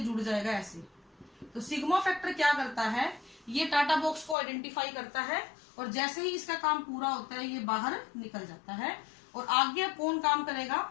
जुड़ जाएगा ऐसे। तो सिग्मा फैक्टर क्या करता है, ये टाटा बॉक्स को आइडेंटिफाई करता है और जैसे ही इसका काम पूरा होता है ये बाहर निकल जाता है। और आगे कौन काम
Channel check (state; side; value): drops out; right; at 4.4 s